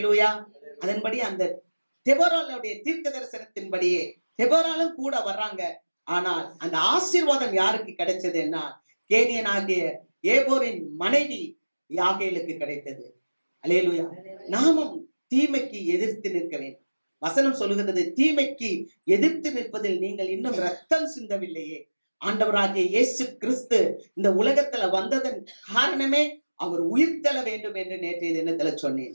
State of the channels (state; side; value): inverted; both; correlation -1.00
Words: அதன்படி அந்த தெபோராளுடைய தீர்க்க தரிசனத்தின்படியே தெபோராளும் கூட வர்றாங்க. ஆனால் அந்த ஆசீர்வாதம் யாருக்கு கிடைச்சதுன்னா, கேனியனாகிய ஏபோரின் மனைவி யாகேலுக்கு கிடைத்தது. அல்லேலூயா. நாமும் தீமைக்கு எதிர்த்து நிற்க வேண்டும். வசனம் சொல்லுகிறது, தீமைக்கு எதிர்த்து நிற்பதில் நீங்கள் இன்னும் ரத்தம் சிந்தவில்லையே. ஆண்டவராகிய இயேசு கிறிஸ்து இந்த உலகத்துல வந்ததன் காரணமே அவர் உயிர்த்தெழ வேண்டும் என்று நேற்றைய தினத்துல சொன்னேன்.